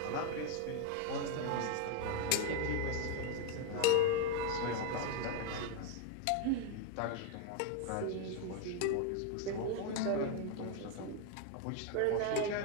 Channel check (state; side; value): different; both; correlation 0.01